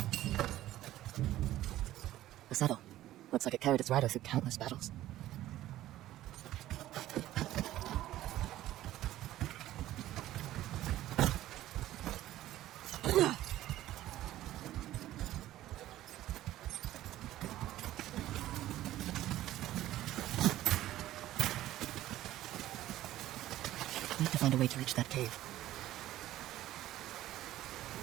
The saddle. Looks like it carried its rider through countless battles. Need to find a way to reach that cave.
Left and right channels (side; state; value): left; quieter; 14.3 dB